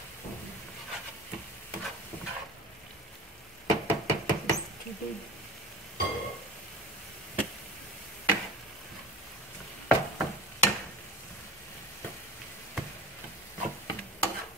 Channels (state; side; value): normal; both; correlation 0.34